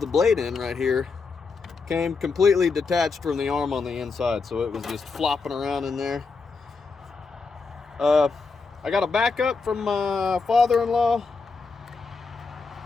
blade in right here came completely detached from the arm on the inside, so it was just flopping around in there. I got a backup from my father-in-law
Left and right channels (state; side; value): quieter; right; 4.5 dB